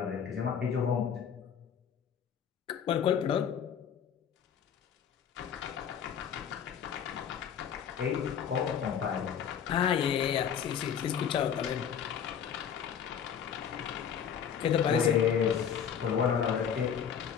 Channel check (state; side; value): quieter; right; 8.1 dB